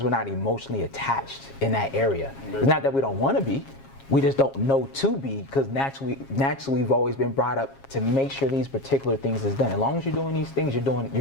we're not emotionally attached in that area. It's not that we don't want to be. We just don't know to be, because naturally we've always been brought up to make sure these particular things is done. As long as you're doing these things, you're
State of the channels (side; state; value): right; late; 7.4 ms